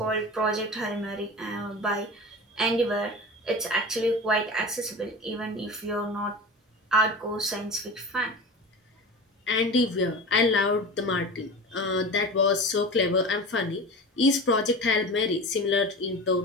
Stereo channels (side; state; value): both; normal; correlation 0.31